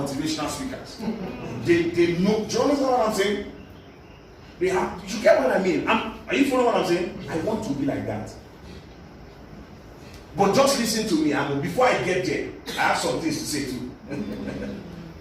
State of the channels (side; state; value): both; identical; correlation 1.00